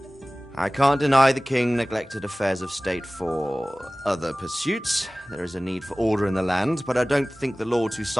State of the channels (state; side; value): normal; both; correlation 0.98